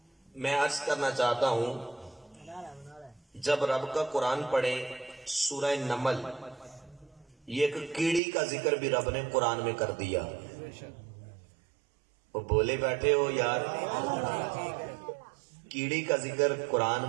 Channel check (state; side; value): drops out; left; at 8.2 s